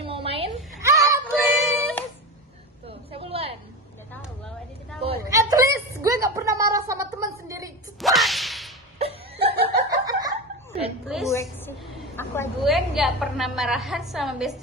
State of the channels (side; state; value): both; normal; correlation 0.23